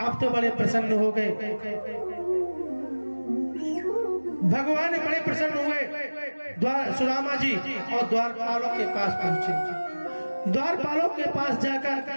अब तो बड़े प्रसन्न हो गए, भगवान बड़े प्रसन्न हुए। सुदामा जी और द्वारपालों के पास पहुंचे। द्वारपालों के पास जाकर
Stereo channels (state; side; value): inverted; both; correlation -1.00